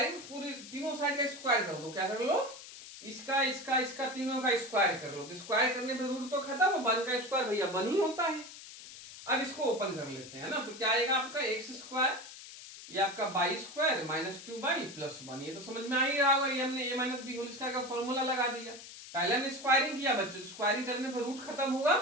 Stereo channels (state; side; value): noise; left; hiss, 15 dB below the sound